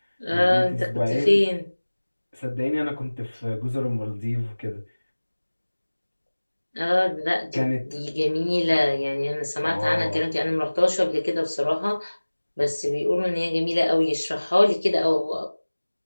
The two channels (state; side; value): inverted; both; correlation -1.00